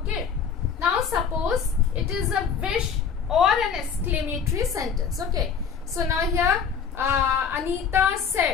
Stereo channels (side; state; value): right; quieter; 6.6 dB